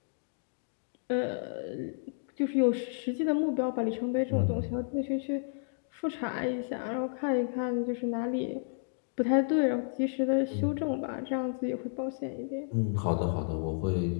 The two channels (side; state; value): right; silent; digital silence